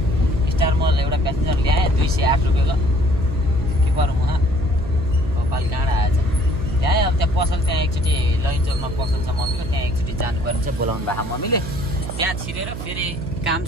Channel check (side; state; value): right; noise; hum, 7 dB below the sound